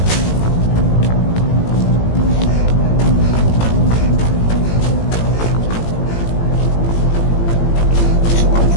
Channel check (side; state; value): right; late; 18 ms